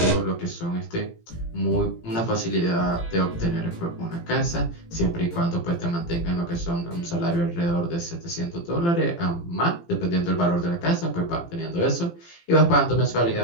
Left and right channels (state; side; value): late; right; 17 ms